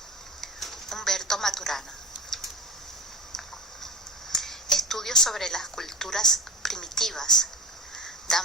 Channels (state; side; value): normal; both; correlation 0.31